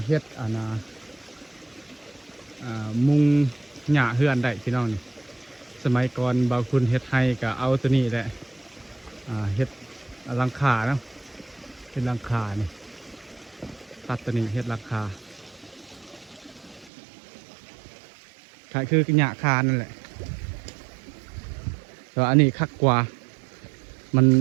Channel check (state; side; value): drops out; left; at 16.9 s